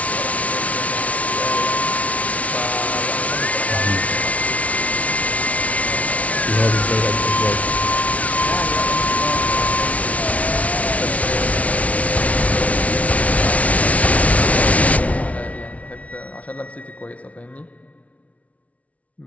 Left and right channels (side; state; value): right; late; 0.067 ms